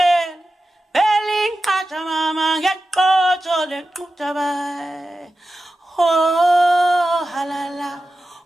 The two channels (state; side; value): normal; both; correlation 0.93